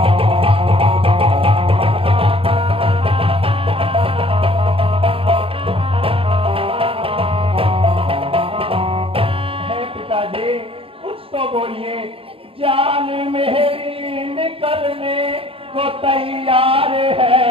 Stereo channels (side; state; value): left; late; 0.27 ms